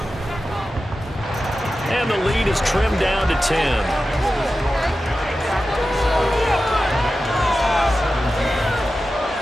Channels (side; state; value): both; normal; correlation 0.93